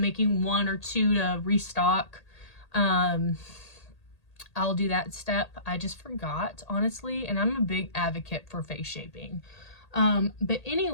1 or 2 to restock, I'll do that step. I just forgot, honestly, and I'm a big advocate for face shaping. But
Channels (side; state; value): right; late; 1.8 ms